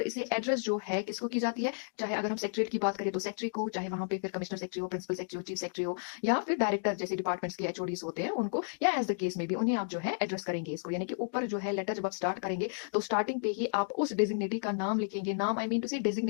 इसे एड्रेस जो है किसको की जाती है, चाहे अगर हम सेक्रेटरी की बात करें तो सेक्रेटरी को, चाहे वहां पे फिर कमिश्नर सेक्रेटरी हो, प्रिंसिपल सेक्रेटरी हो, चीफ सेक्रेटरी हो, या फिर डायरेक्टर जैसे डिपार्टमेंट्स के एचओडीज होते हैं उनको, या एज द केस में भी उन्हें आप जो है एड्रेस करेंगे इसको। यानी कि ऊपर जो है लेटर जब आप स्टार्ट करेंगे तो स्टार्टिंग पे ही आप उस डेजिग्नेटी का नाम लिखेंगे, नाम आई मीन टू से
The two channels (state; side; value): silent; right; digital silence